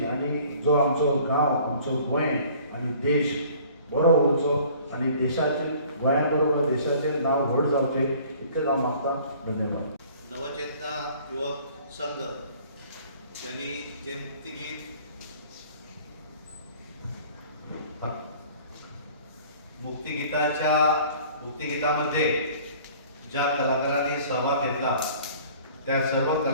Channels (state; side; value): inverted; both; correlation -0.51